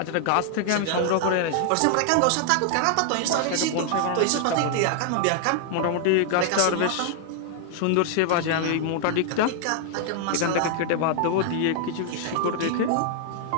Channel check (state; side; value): different; both; correlation 0.00